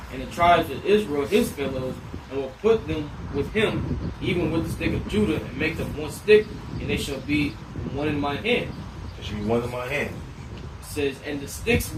and the tribes of Israel his fellows, and will put them with him, even with the stick of Judah, and make them one stick, and they shall be one in my hand." They should be one in my hand. It says, "And the sticks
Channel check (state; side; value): identical; both; correlation 1.00